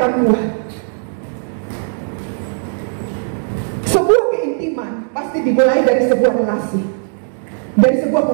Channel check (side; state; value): left; silent; 68 dB below the other